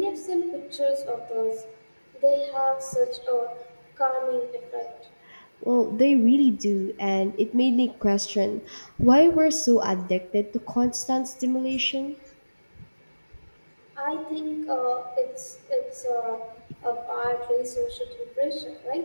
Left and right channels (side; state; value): both; inverted; correlation -1.00